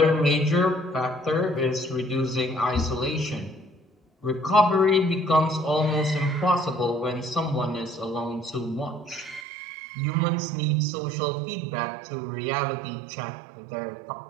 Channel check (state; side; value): drops out; left; at 9.5 s